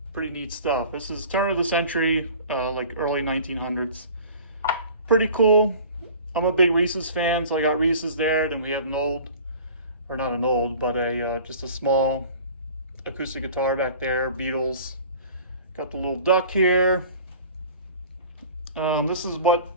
Pretty neat stuff. This is turn of the century, like early 1900s. Pretty cool. I'm a big Reese's fan, so I got Reese's there. Then we have an old, or not an old, but just a small acoustic guitar back there, Beatles. Got the little duck here. This is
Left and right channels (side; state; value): both; inverted; correlation -0.44